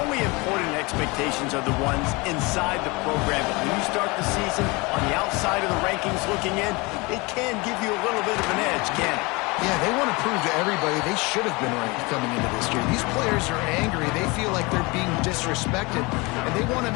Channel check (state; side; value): quieter; right; 25.6 dB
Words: important expectations are the ones inside the program. But when you start the season on the outside of the rankings looking in, it can give you a little bit of an edge, can't it? Yeah, they want to prove to everybody they should have been ranked coming into this year. These players are angry. They feel like they're being disrespected, and they want to